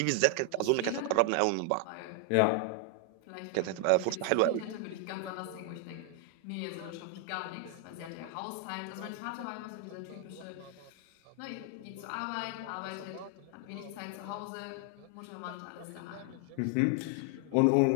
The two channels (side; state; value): both; different; correlation 0.00